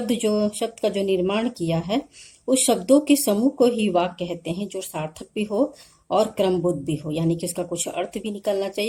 का जो निर्माण किया है, उस शब्दों के समूह को ही वाक्य कहते हैं, जो सार्थक भी हो और क्रमबद्ध भी हो, यानी कि उसका कुछ अर्थ भी निकलना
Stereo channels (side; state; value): both; identical; correlation 1.00